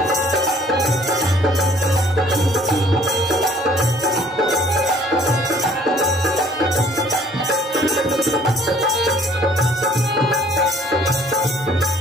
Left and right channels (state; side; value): normal; both; correlation 0.57